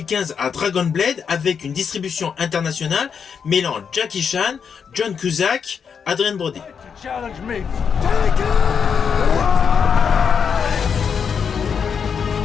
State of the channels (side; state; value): right; quieter; 6.7 dB